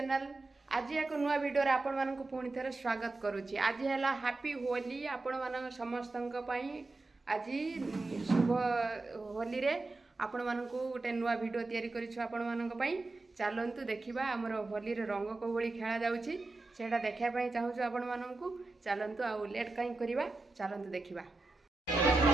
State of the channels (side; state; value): left; quieter; 3.3 dB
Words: आज एक नुआ वीडियो रे आपण मानक पुणी थे स्वागत करुच्ची। आज है हैप्पी होली आपण मान समस्त आज शुभ होली रे आपण मानक गोटे नुआ वीडियो तैयारी करिछु आपण मानक पई। चलंतु देखिबा हमर होली रे रंग को भली खेला जाउची सेटा देखिया पई चाहूछु आपण मानक। चलंतु आ लेट काई करबा, चलंतु देखिबा।